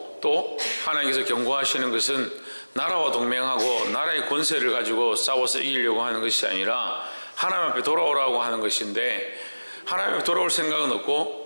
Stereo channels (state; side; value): inverted; both; correlation -1.00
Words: 또 하나님께서 경고하시는 것은 나라와 동맹하고 나라의 권세를 가지고 싸워서 이기려고 하는 것이 아니라 하나님 앞에 돌아오라고 하는 것인데, 하나님 앞에 돌아올 생각은